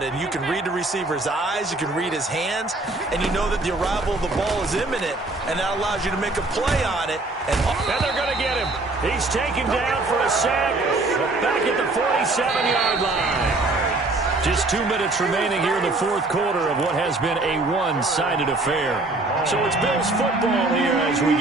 And you can read the receiver's eyes, you can read his hands, and you know that the arrival of the ball is imminent, and that allows you to make a play on it. And they're going to get him. He's taken down for a sack back at the 47-yard line. Just 2 minutes remaining here in the fourth quarter of what has been a one-sided affair. So it's Bills football here as we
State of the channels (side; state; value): left; quieter; 3.0 dB